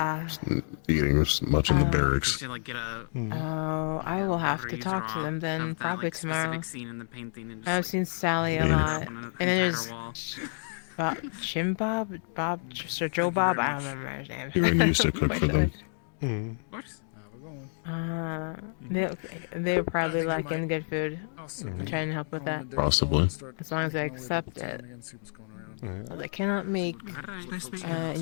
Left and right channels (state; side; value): silent; right; digital silence